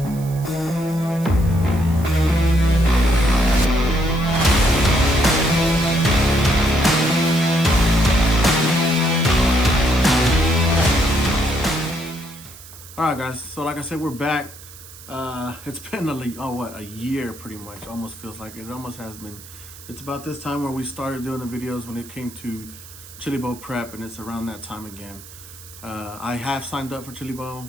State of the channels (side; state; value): right; noise; hiss, 18 dB below the sound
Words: All right, guys. So like I said, we're back. It's been a year pretty much. Almost feels like it almost has been. It's about this time where we started doing the videos when it came to Chili Bowl prep, and it's around that time again. I have signed up for Chili Bowl.